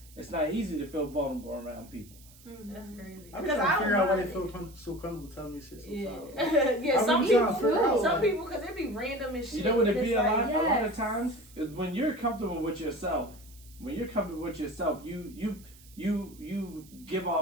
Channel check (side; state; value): right; noise; hiss, 23 dB below the sound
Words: it's not easy to feel vulnerable around people. That's crazy. I'm Because trying to figure out why they feel. feel so comfortable telling me shit Yeah, sometimes. yeah. Some I'm trying to people, figure out, some like- people, because it be random and shit. You know what it and be it's a lot? like, A lot of yes. times is when you're comfortable with yourself. When you're comfortable with yourself, you give